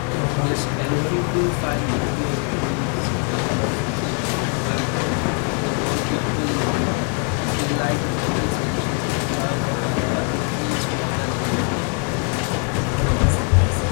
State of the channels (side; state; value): right; quieter; 38.9 dB